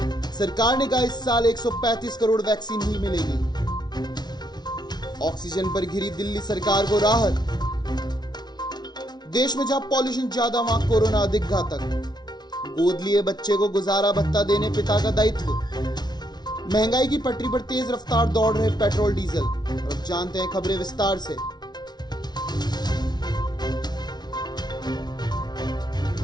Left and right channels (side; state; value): right; late; 0.20 ms